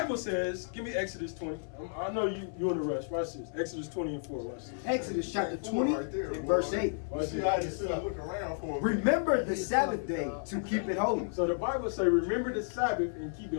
says, give me Exodus 20. I know you in a rush. Watch this. Exodus 20 and 4. Watch this. Exodus chapter 20 Right there, and boy. verse 8. You see, I just sit and look around for a minute. Remember the Sabbath day to keep it holy. So the Bible say, remember the Sabbath and keep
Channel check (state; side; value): silent; right; 55 dB below the other